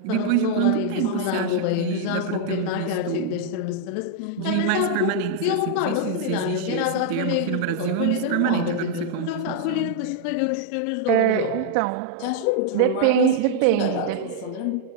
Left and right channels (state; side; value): different; both; correlation 0.00